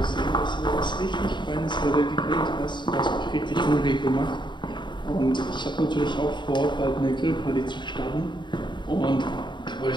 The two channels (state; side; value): late; right; 0.22 ms